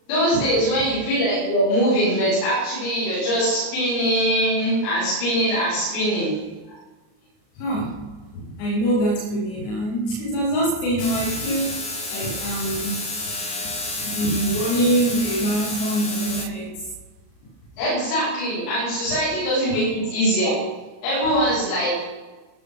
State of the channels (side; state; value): right; late; 38 ms